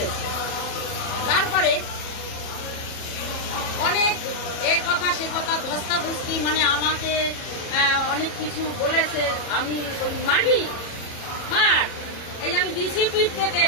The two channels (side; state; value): right; late; 37 ms